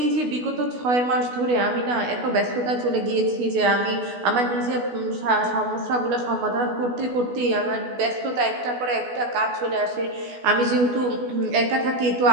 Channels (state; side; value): late; left; 16 ms